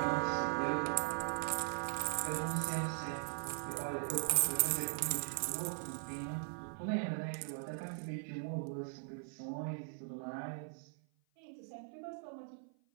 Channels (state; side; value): silent; left; 51 dB below the other